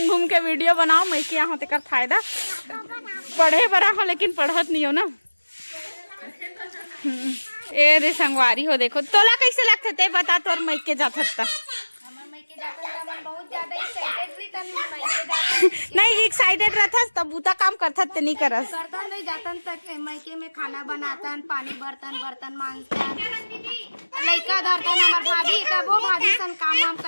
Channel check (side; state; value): both; inverted; correlation -1.00